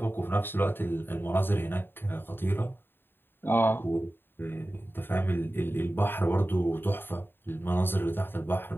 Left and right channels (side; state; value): right; late; 0.10 ms